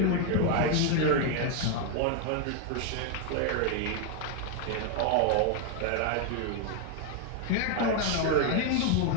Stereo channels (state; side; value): different; both; correlation 0.00